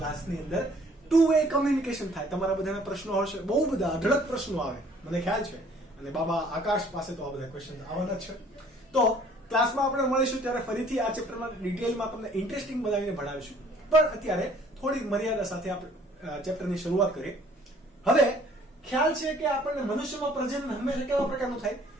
અંદર ટુ વે કમ્યુનિકેશન થાય. તમારા બધાના પ્રશ્નો હશે, બહુ બધા અઢળક પ્રશ્નો આવે, મને ખ્યાલ છે, અને બાબા આકાશ પાસે તો આ બધા ક્વેશ્ચન આવવાના છે. તો ક્લાસમાં આપણે મળીશું ત્યારે ફરીથી આ ચેપ્ટરમાં ડિટેલમાં તમને ઇન્ટરેસ્ટિંગ બનાવીને ભણાવીશું. પણ અત્યારે થોડીક મર્યાદા સાથે આપણે ચેપ્ટરની શરૂઆત કરીએ. હવે ખ્યાલ છે કે આપણને મનુષ્યમાં પ્રજનન હંમેશા કેવા પ્રકારનું થાય?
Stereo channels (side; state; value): both; normal; correlation 0.57